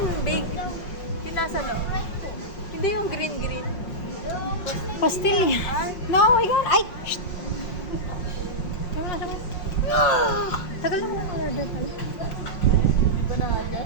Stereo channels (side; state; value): right; late; 5.5 ms